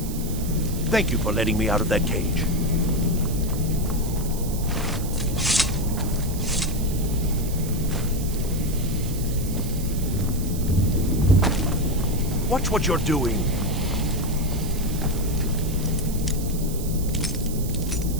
Thank you for letting me out of that cage. Watch what you're doing.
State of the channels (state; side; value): noise; right; hiss, 12 dB below the sound